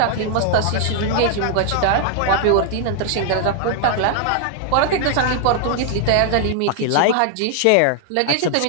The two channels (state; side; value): different; both; correlation 0.00